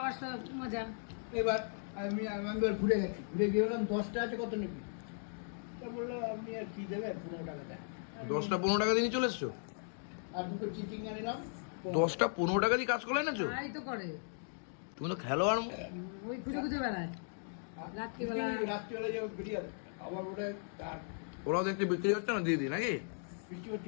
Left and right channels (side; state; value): right; silent; digital silence